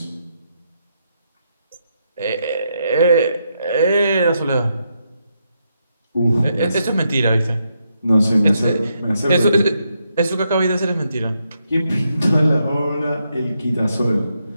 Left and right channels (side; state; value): both; inverted; correlation -0.81